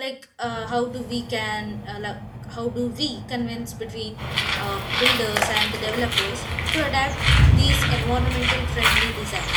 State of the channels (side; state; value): both; identical; correlation 1.00